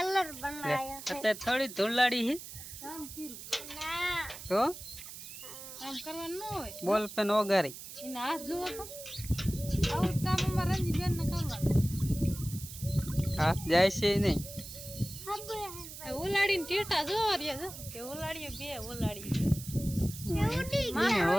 બનાવ્યો અત્યારે થોડી ધૂળાડી છે કામ કર્યું ના તો કામ કરવાનું ન હોય બોલ પેન ઓગારી એને હાથ જુઓ તો આવું કામ અમારા રંજી બેન ને કરવાનું હાથ જાય છે નહીં ઉલાડીને ટેટા જોવા રહ્યા જો કે ઉલાડીએ બે ઉલાડી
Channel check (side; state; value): right; noise; hiss, 12 dB below the sound